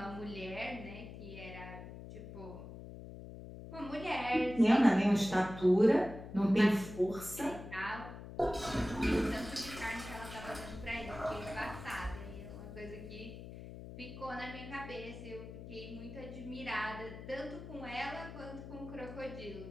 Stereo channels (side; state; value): left; noise; hum, 12 dB below the sound